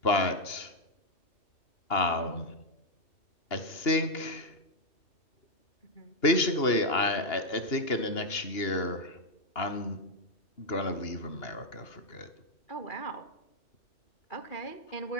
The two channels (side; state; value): right; late; 2.8 ms